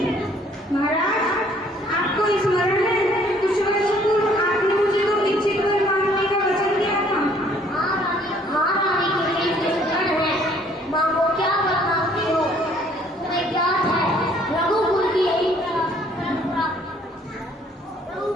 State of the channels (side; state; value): both; normal; correlation 0.60